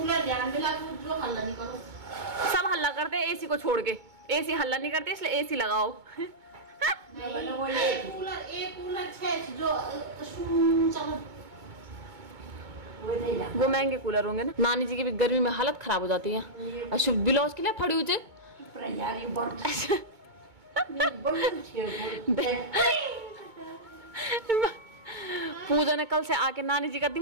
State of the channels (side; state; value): left; late; 2.2 ms